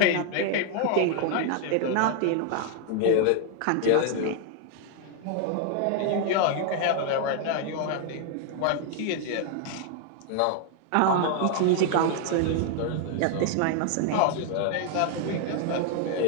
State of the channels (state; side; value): different; both; correlation 0.00